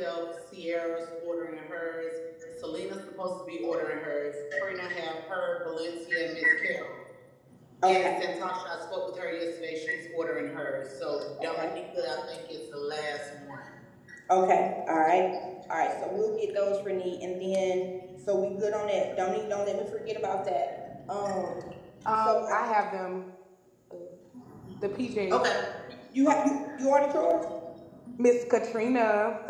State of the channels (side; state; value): both; identical; correlation 1.00